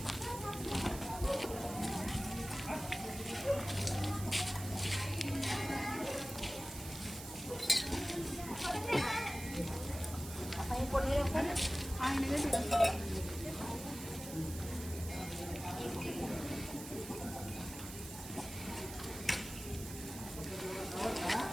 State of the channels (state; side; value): noise; right; hiss, 11 dB below the sound